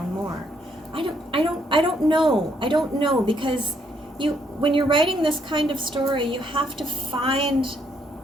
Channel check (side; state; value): both; normal; correlation 0.71